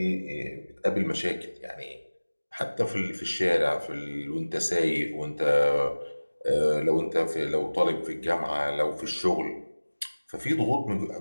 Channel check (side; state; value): both; inverted; correlation -1.00